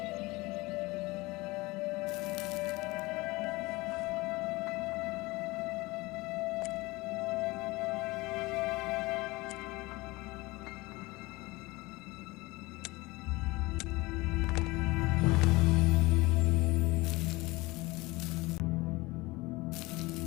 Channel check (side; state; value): right; quieter; 22.0 dB